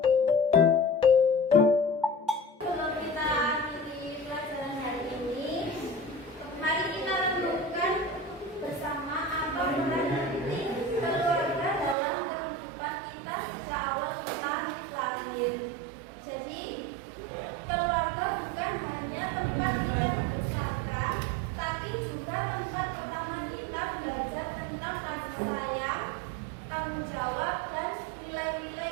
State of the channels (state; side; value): drops out; left; at 12.0 s